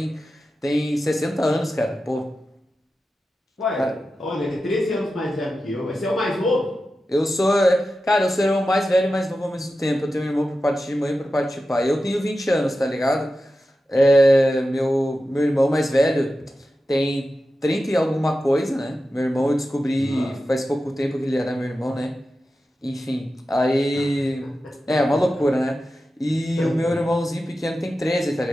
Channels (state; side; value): normal; both; correlation 0.92